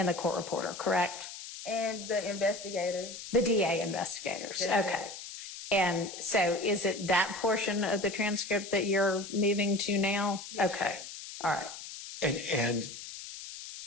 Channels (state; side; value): noise; left; hiss, 11 dB below the sound